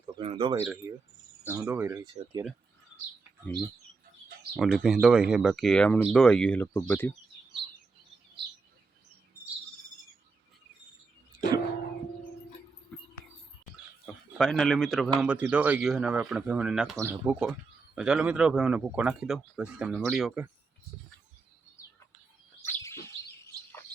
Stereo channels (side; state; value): left; quieter; 4.3 dB